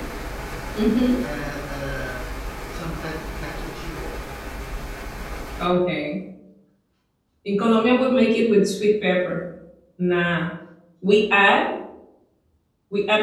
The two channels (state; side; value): identical; both; correlation 1.00